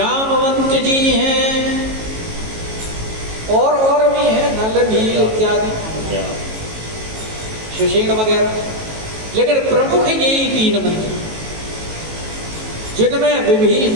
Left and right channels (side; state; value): left; late; 18 ms